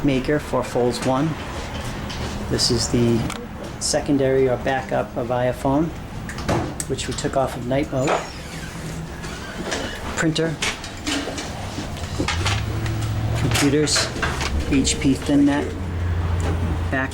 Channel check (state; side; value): identical; both; correlation 1.00